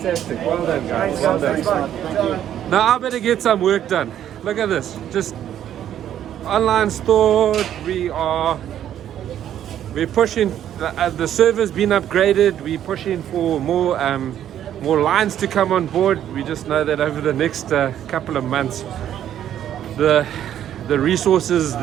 Well done, guys. Well done. Now I better get some work done. Look at this. Just online store. We're pushing. The server's been upgraded. We're pushing for more lines to come on board. We just know that over the next couple of months, the resources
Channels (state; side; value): quieter; left; 10.7 dB